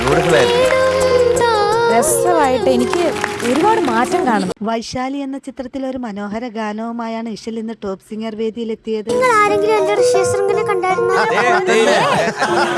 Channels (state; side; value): identical; both; correlation 1.00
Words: രസമായിട്ട് എനിക്ക് ഒരുപാട് മാറ്റം കാണുന്നു. വൈശാലി എന്ന ചിത്രത്തിലെ ഒരു മനോഹര ഗാനവുമായാണ് ഇഷൽ ഇന്ന് ടോപ്പ് സിംഗർ വേദിയിലെത്തിയത്.